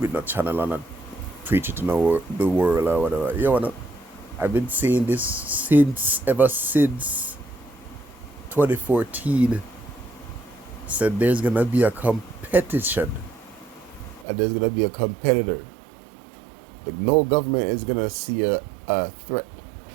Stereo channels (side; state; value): left; drops out; at 14.2 s